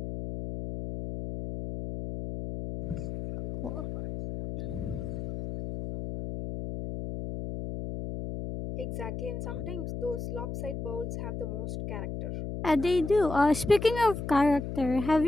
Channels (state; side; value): noise; left; hum, 6 dB below the sound